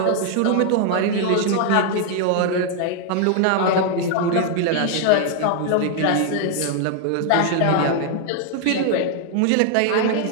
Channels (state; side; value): different; both; correlation 0.00